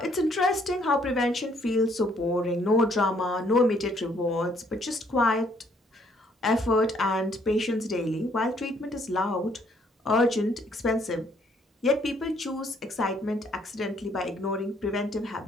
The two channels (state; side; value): normal; both; correlation 0.66